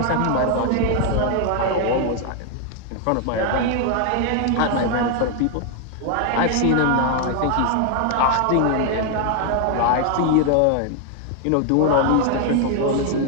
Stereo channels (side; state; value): both; different; correlation 0.00